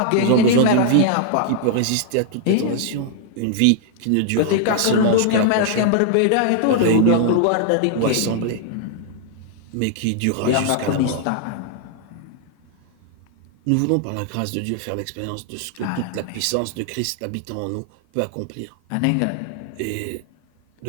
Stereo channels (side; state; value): both; different; correlation -0.01